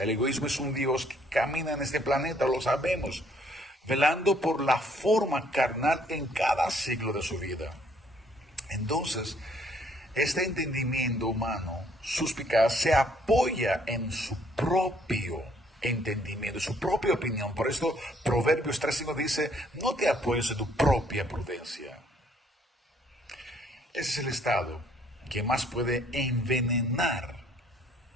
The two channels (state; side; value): normal; both; correlation 0.64